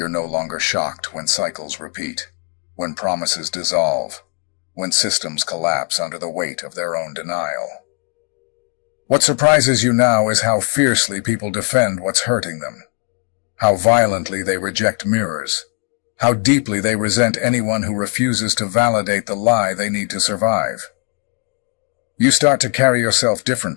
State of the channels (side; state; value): right; quieter; 35.0 dB